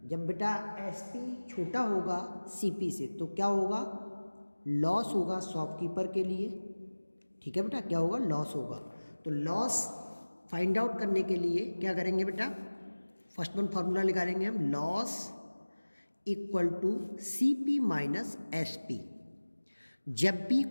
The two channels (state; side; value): inverted; both; correlation -1.00